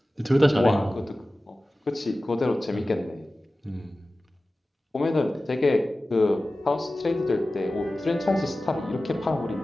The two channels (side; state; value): both; normal; correlation 0.96